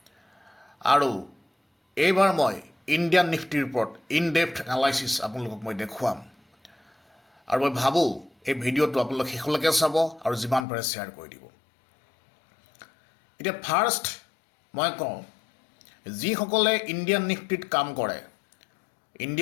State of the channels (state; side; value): drops out; right; at 10.7 s